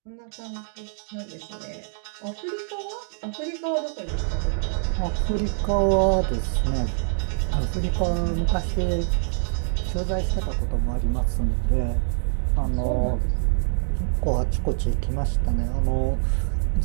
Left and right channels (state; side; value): silent; left; 62 dB below the other